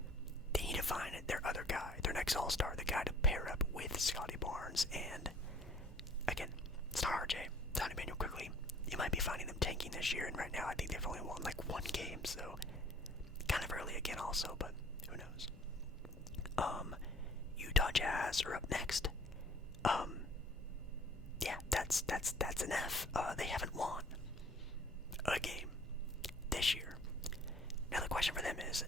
They need to find their other guy, their next all-star, the guy to pair up with Scotty Barnes. And again, it's not RJ, it's not Emmanuel Quickly. You might be finding them tanking this year, and right now I think they've only won like 1 game, so kind of early again also, but who knows. Utah Jazz are up next. Yeah, that's an F. They haven't won a game this year. Now the question for them is,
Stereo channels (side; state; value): both; normal; correlation 0.52